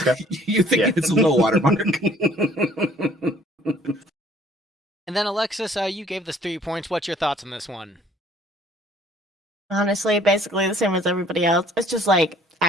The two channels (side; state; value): both; normal; correlation 0.57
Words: Versus you think it's a low watermark. And then Alexis, you gave this 3 points. What's your thoughts on this one? Honestly, basically the same as everybody else. It's just like